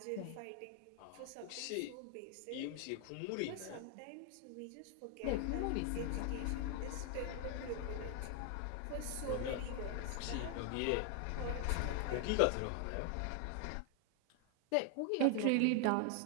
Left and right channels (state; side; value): different; both; correlation 0.00